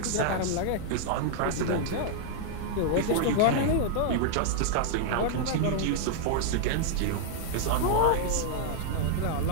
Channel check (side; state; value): both; different; correlation -0.01